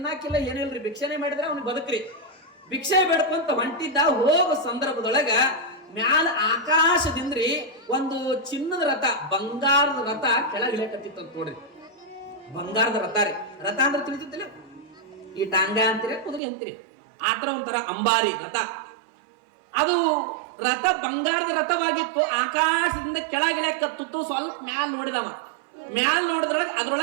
ಏನಿಲ್ರಿ, ಭಿಕ್ಷೆನೆ ಮಾಡಿದ್ರೆ ಅವ್ನಿಗೆ ಬದುಕ್ರಿ. ಭಿಕ್ಷೆ ಬೇಡ್ಕೊಂತ ಹೊಂಟಿದ್ದ. ಹೋಗೋ ಸಂದರ್ಭದೊಳಗ ಮ್ಯಾಲ ಆಕಾಶದಿಂದ್ರಿ ಒಂದು ಚಿನ್ನದ ರಥ, ಬಂಗಾರದ ರಥ ಕೆಳಗಿಳಕತ್ತಿತ್ತು ಅಂತ ನೋಡ್ರಿ. ಬಂಗಾರದ ರಥ ರೀ. ರಥ ಅಂದ್ರೆ ತಿಳಿತಿಲ್ಲ, ಈ ಟಾಂಗ ಅಂತೀರಿ, ಕುದುರೆ ಅಂತೀರಿ, ಆತರ ಒಂಥರ ಅಂಬಾರಿ ರಥ. ಅದು ರಥ ಬಂಗಾರದ ರಥವಾಗಿತ್ತು. ಆಕಾಶದಿಂದ ಕೆಳಗಿಳಕತ್ತಿತ್ತು. ಸ್ವಲ್ಪ ಮ್ಯಾಲ ನೋಡಿದವ. ಮ್ಯಾಲ ನೋಡಿದ್ರೊಳಗೆ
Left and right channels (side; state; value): left; drops out; at 16.4 s